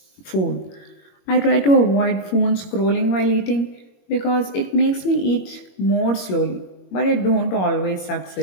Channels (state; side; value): late; right; 21 ms